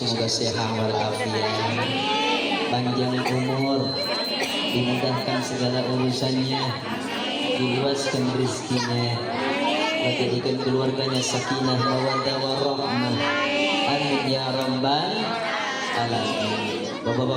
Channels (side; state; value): both; identical; correlation 1.00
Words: sehat walafiat, panjang umur, dimudahkan segala urusannya, diluaskan rezekinya, jadikan keluarganya sakinah mawaddah warahmah. Amin ya rabbal alamin.